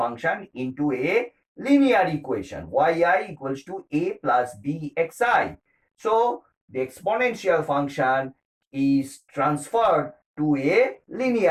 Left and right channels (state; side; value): identical; both; correlation 1.00